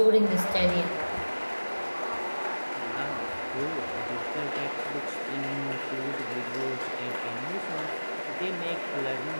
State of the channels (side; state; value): both; inverted; correlation -1.00